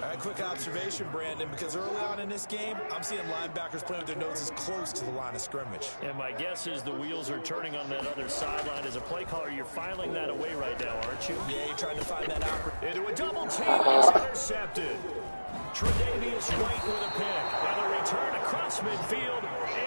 right, quick observation, Brandon, because early on in this game, I'm seeing linebackers playing with their noses close to the line of scrimmage. And my guess is the wheels are turning on that other sideline. As a play caller, you're filing that away right now, aren't you? Yeah, you're trying to find that opportunity. Into a double team. It's intercepted. Tre'Davious White with a pick. And a return across midfield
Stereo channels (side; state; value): both; inverted; correlation -1.00